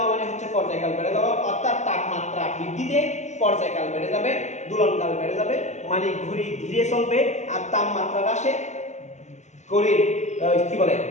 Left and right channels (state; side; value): late; right; 0.34 ms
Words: মানে হচ্ছে পর্যায়কাল বেড়ে যাওয়া। অর্থাৎ তাপমাত্রা বৃদ্ধিতে পর্যায়কাল বেড়ে যাবে, দোলনকাল বেড়ে যাবে, মানে ঘড়ি ধীরে চলবে। আর তাপমাত্রা হ্রাসে ঘড়ির কি বলে